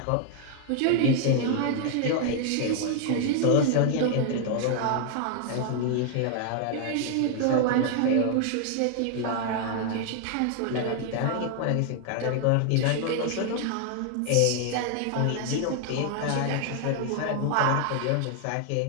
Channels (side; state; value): both; different; correlation 0.00